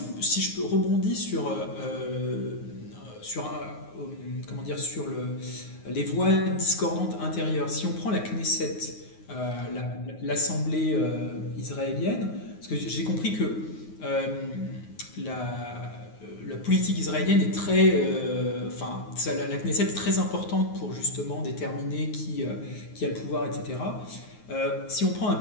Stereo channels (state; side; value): late; right; 9.5 ms